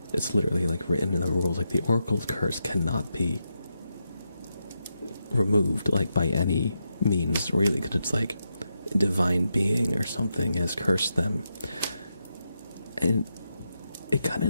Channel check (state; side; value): inverted; both; correlation -0.85